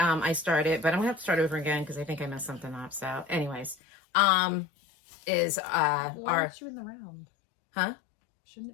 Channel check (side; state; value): right; drops out; at 3.8 s